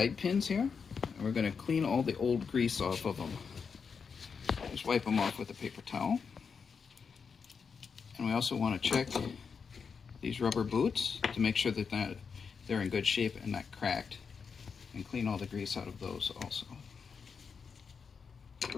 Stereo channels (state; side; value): quieter; right; 5.8 dB